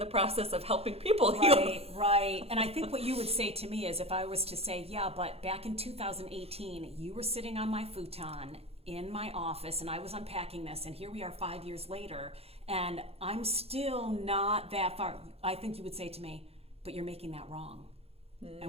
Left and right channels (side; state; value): left; late; 0.29 ms